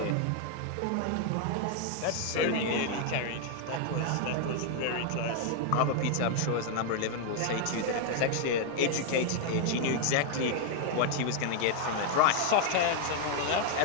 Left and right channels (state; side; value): different; both; correlation 0.00